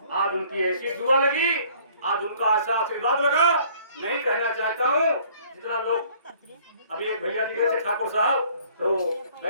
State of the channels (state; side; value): inverted; both; correlation -0.57